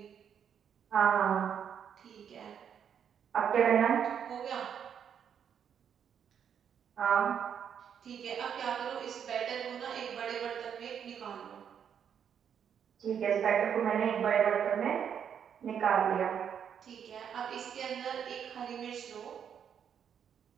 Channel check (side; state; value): left; quieter; 8.2 dB